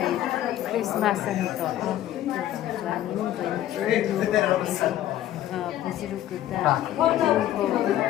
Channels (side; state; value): right; quieter; 12.7 dB